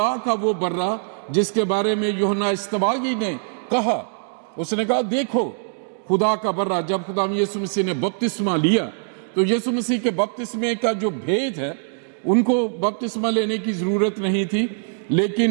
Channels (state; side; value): silent; left; digital silence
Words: کا وہ برہ جس کے بارے میں یوحنا استباغی نے کہا، اس نے کہا دیکھو خدا کا برہ۔ جب خدا یسوع مسیح نے بپتسمہ لیا تو یسوع مسیح کے بپتسمے کا جو بھید ہے، ان کو بپتسمہ لینے کی ضرورت نہیں تھی،